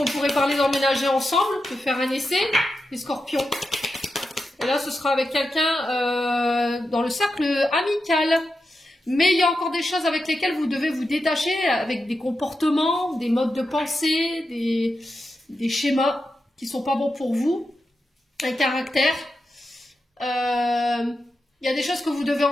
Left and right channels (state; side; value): normal; both; correlation 0.88